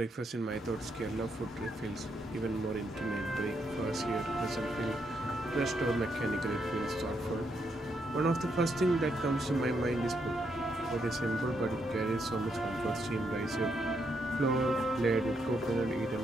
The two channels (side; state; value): both; normal; correlation 0.78